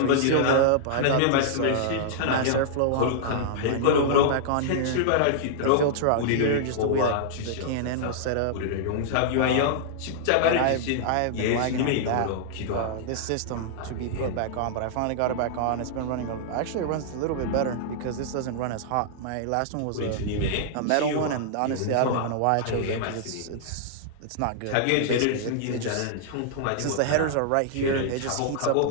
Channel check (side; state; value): both; different; correlation -0.01